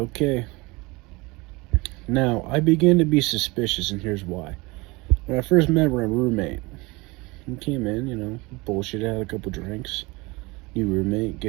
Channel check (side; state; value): left; quieter; 24.2 dB